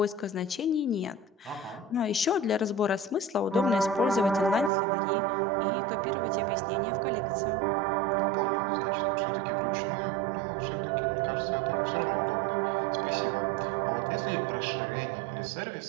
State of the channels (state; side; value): drops out; left; at 4.7 s